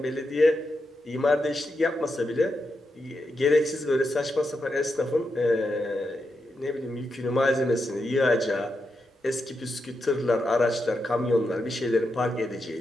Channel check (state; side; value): normal; both; correlation 0.85